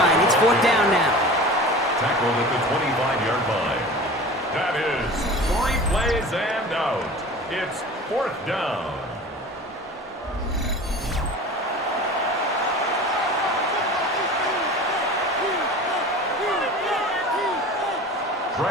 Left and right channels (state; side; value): normal; both; correlation 0.38